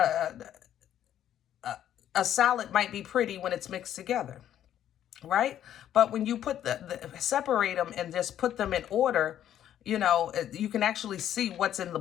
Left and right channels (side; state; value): right; quieter; 10.9 dB